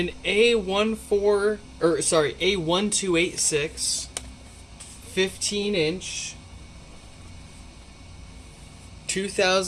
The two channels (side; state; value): both; identical; correlation 1.00